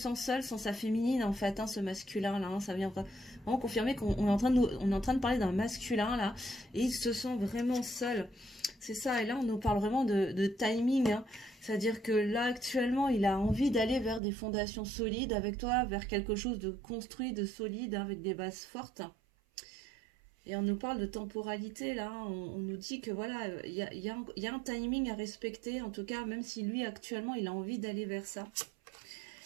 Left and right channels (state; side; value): drops out; left; at 14.2 s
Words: seul sans sa féminine, en fait, hein, ce masculin-là. Hein, ça vient vraiment confirmer qu'on est on est en train de parler d'un masculin, là, et il se sent vraiment seul. C'est ça, et là, on nous parle vraiment de timing, hein. C'est-à-dire que là, actuellement, il a envie d'aller vers des fondations solides avec toi, vers quelque chose de construit, de solide, hein, avec des bases fortes. Et on nous parle de temporalité, là, on nous dit que voilà, il y a un timing à respecter, en tout cas, même si lui, actuellement, il a envie d'aller vers ça.